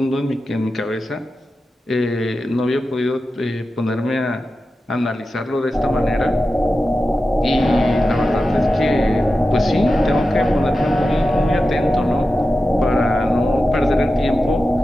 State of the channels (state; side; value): normal; both; correlation 0.92